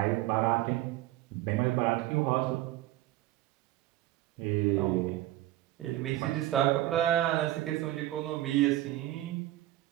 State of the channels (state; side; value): quieter; left; 15.3 dB